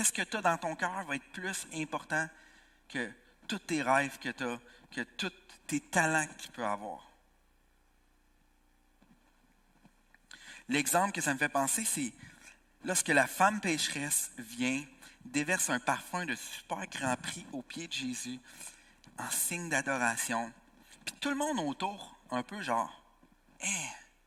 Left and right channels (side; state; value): both; identical; correlation 1.00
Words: que tu as dans ton cœur va être plus important que tous tes rêves que tu as, que tous tes talents que tu peux avoir. L'exemple que ça me fait penser, c'est lorsque la femme pécheresse vient, déverse un parfum de super grand prix aux pieds de Jésus en signe d'adoration. Puis tout le monde autour, un peu genre, hey,